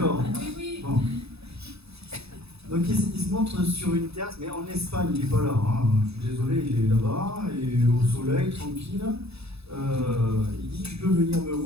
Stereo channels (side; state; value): left; late; 0.79 ms